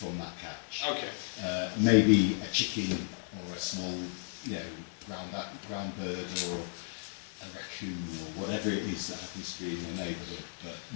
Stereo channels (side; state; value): right; silent; 55 dB below the other